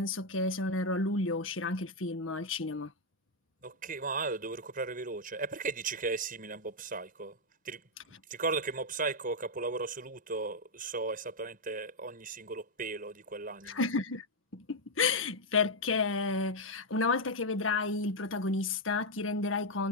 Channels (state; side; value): normal; both; correlation 0.01